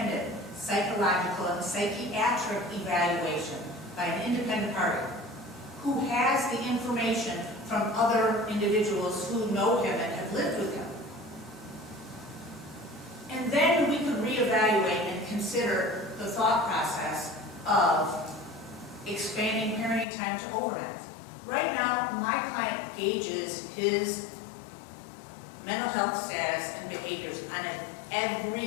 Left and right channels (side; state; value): right; drops out; at 20.1 s